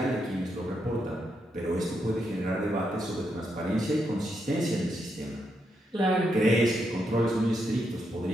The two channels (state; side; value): normal; both; correlation 0.81